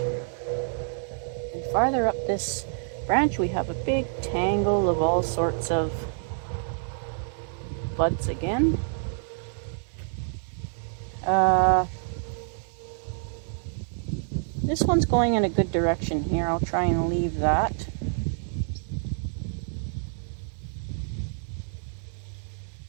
And farther up this branch we have a big tangle of all sorts of buds again. This one's going in a good direction here. I'll try and leave that.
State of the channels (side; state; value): left; silent; 60 dB below the other